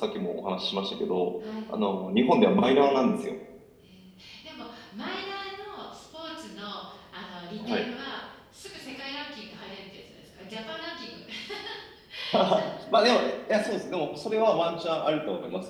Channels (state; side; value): identical; both; correlation 1.00